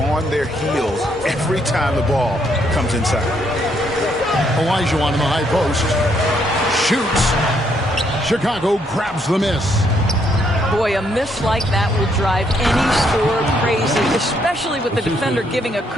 their heels every time the ball comes inside. Olajuwon in the high post. Shoots. Chicago grabs the miss. Boy, a miss like that will drive any scorer crazy, especially with the defender giving a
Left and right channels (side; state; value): both; normal; correlation 0.72